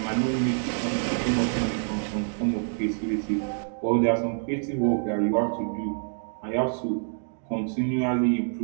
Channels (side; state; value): left; silent; digital silence